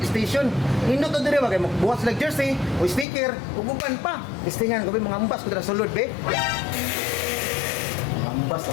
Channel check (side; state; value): right; drops out; at 3.1 s